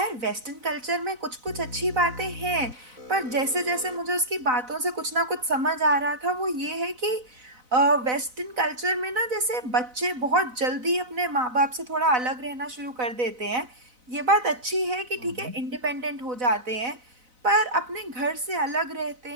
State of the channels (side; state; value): left; late; 4.0 ms